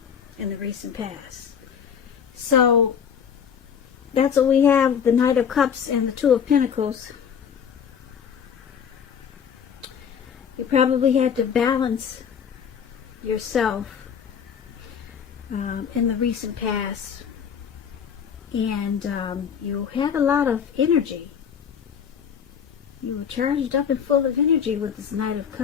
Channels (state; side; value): quieter; right; 7.5 dB